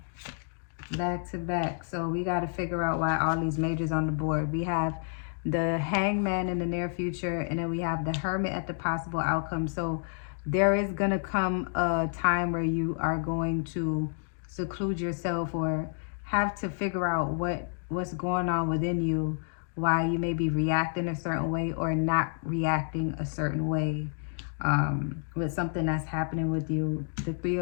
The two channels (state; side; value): silent; right; digital silence